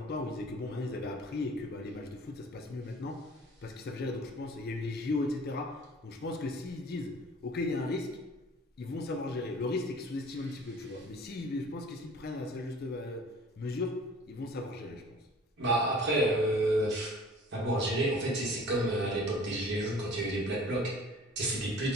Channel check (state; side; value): normal; both; correlation 0.47